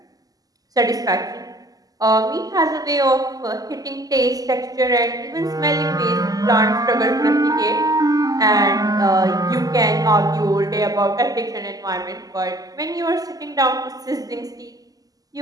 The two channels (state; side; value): late; left; 0.17 ms